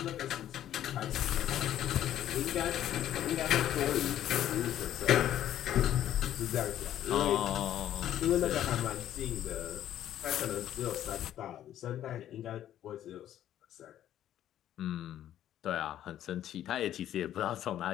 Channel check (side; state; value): right; quieter; 11.7 dB